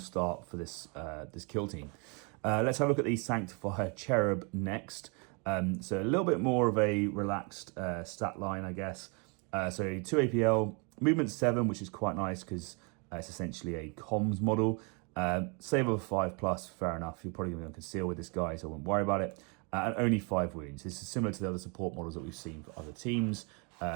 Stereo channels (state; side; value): quieter; left; 33.6 dB